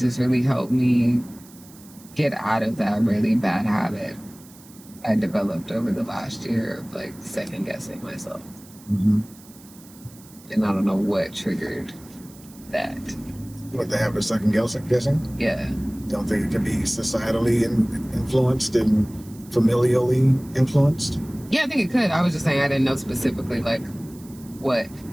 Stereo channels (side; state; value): right; noise; hiss, 23 dB below the sound